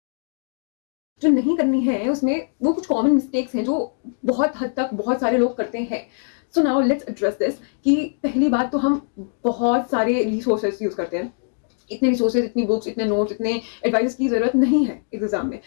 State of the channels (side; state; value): right; silent; 64 dB below the other